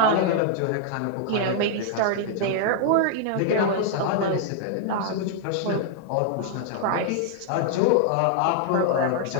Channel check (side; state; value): both; different; correlation 0.00